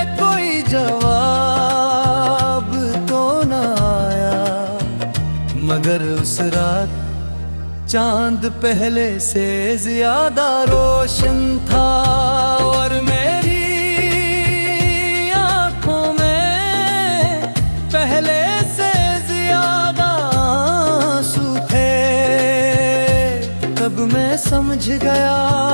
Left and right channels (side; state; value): both; inverted; correlation -1.00